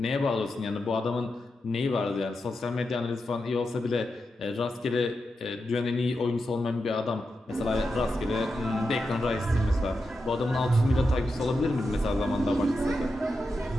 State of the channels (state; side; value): normal; both; correlation 0.88